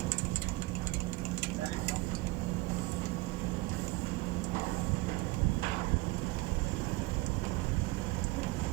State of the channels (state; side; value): quieter; left; 21.5 dB